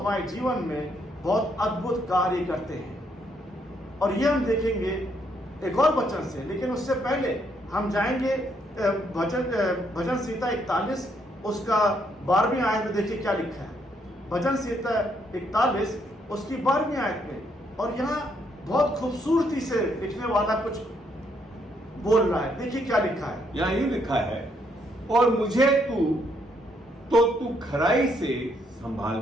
जीवन में बहुत अद्भुत कार्य करते हैं। और ये हम देखेंगे एक और वचन से, लेकिन उससे पहले हम जाएंगे भजन संहिता 41 उसका 12वीं आयत में। देखिए क्या लिखा है भजन संहिता 41 उसकी 12वीं आयत में, और यहाँ बहुत खूबसूरती से लिखने वाला कुछ बोल रहा है। देखिए क्या लिखा है, यहाँ यूं लिखा है, और मुझे तू खराई से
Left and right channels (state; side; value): normal; both; correlation 0.73